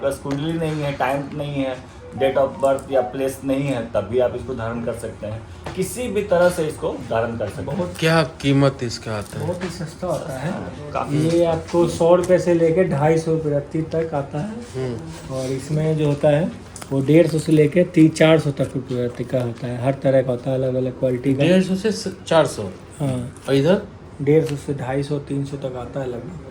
कुंडली नहीं है, टाइम नहीं है, डेट ऑफ बर्थ या प्लेस नहीं है, तब भी आप इसको धारण कर सकते हैं। किसी भी तरह से इसको धारण कर सकते हैं। क्या कीमत इसका आता है? बहुत ही सस्ता होता है। काफी ये आपको 100 रुपये से लेके 250 रुपये तक आता है। और इसमें जो होता है वो 150 से लेके 300-400 तक रुपये का होता है। हर तरह का होता है, अलग अलग क्वालिटी का। 150 से 400। हाँ, और इधर 150 से 250-300 तक आता है लगभग।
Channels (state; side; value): identical; both; correlation 1.00